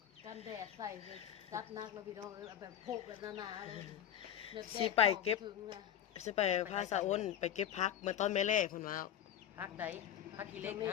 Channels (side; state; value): right; quieter; 10.2 dB